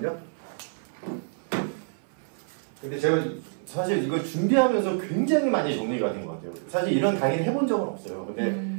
근데 제가 사실 이거 준비하면서 굉장히 많이 정리가 된 것 같아요. 사실 이런 강의를 해본 적은 없어요. 근데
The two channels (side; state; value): left; silent; 56 dB below the other